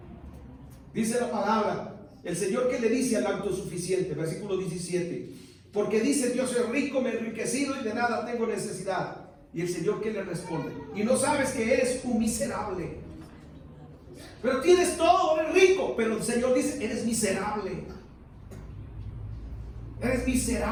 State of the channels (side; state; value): both; identical; correlation 1.00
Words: Dice la palabra, el Señor que le dice al autosuficiente, versículo 17, porque dice: yo soy rico, me he enriquecido y de nada tengo necesidad. Y el Señor que le responde: y no sabes que eres un miserable. Pero tienes todo, eres rico. Pero el Señor dice: eres miserable. Eres